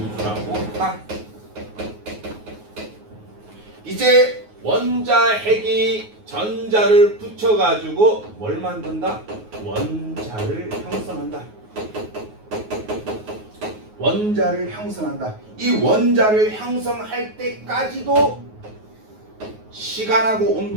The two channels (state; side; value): late; left; 9.4 ms